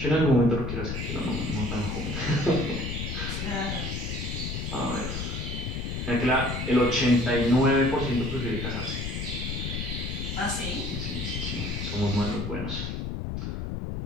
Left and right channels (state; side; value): noise; left; rumble, 4 dB below the sound